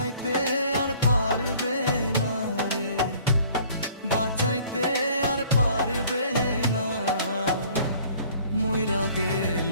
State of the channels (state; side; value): inverted; both; correlation -0.54